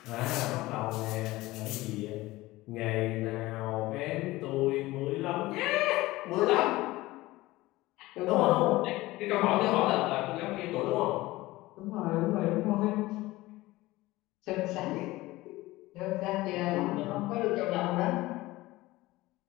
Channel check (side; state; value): right; quieter; 18.9 dB